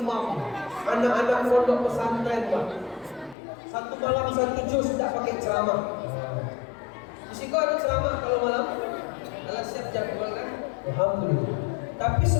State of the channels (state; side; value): drops out; right; at 3.4 s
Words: anak-anak pondok pesantren, Pak. Satu malam satu juz tidak pakai ceramah. Di situ ada ceramah kalau malam. Alah siap jadwal kan? Alhamdulillah. Tapi